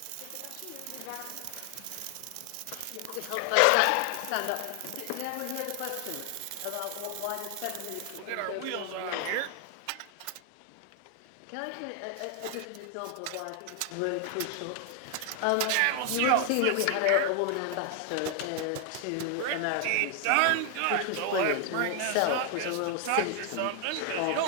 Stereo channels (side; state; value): both; different; correlation 0.00